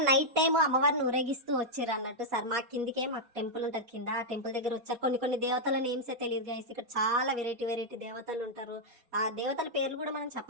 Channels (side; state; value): left; late; 4.2 ms